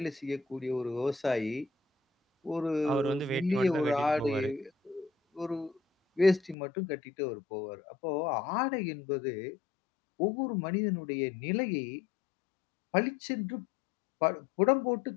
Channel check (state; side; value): drops out; right; at 6.6 s